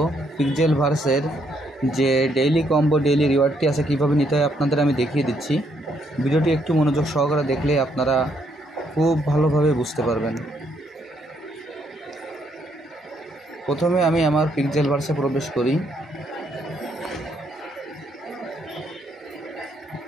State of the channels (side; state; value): both; normal; correlation 0.73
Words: পিক্সেলভার্সের যে ডেইলি কম্বো ডেইলি রিওয়ার্ডটি আছে কীভাবে নিতে হয় আপনাদের আমি দেখিয়ে দিচ্ছি। ভিডিওটি একটু মনোযোগ সহকারে দেখলে আপনারা খুব ভালোভাবে বুঝতে পারবেন। প্রথমে আমি আমার পিক্সেলভার্সে প্রবেশ করি।